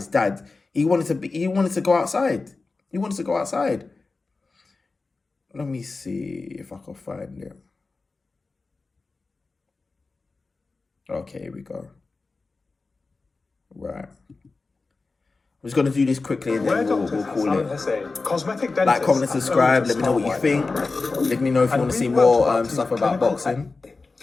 dad, he wanted to go outside. He wanted to go outside. Let me see if I can find it. Okay, here we go. Right. I'm just going to do this quickly and then we'll call it. Cosmetic Like, comment, and subscribe. Let me know what you think. Let me know if you want to see more stuff about boxing.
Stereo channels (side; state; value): right; quieter; 3.8 dB